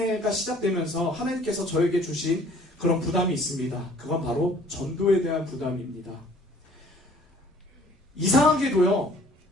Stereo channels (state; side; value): normal; both; correlation 0.55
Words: 시작되면서 하나님께서 저에게 주신 그런 부담이 있습니다. 그건 바로 전도에 대한 부담입니다. 이상한 게도요,